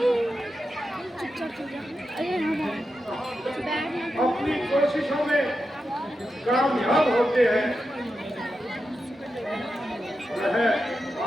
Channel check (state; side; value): normal; both; correlation 0.89